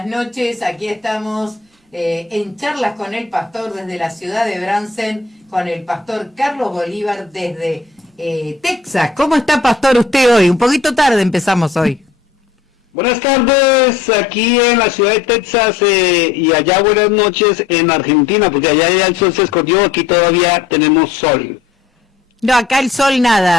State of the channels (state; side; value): quieter; right; 5.1 dB